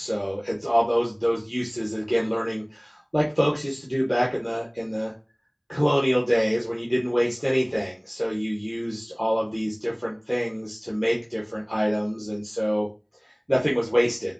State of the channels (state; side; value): identical; both; correlation 1.00